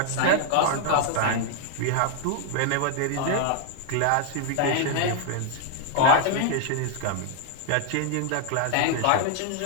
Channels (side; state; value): both; different; correlation 0.00